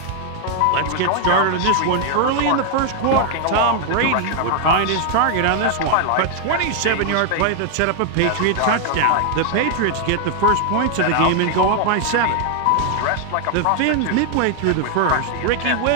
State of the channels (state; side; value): different; both; correlation 0.00